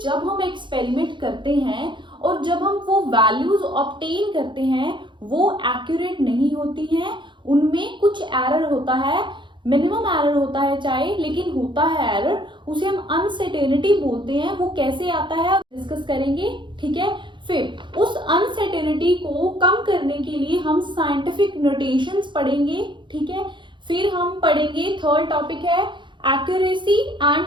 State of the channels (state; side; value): late; left; 0.23 ms